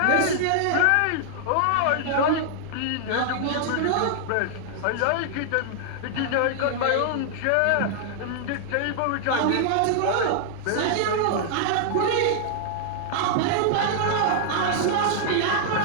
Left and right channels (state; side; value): different; both; correlation -0.01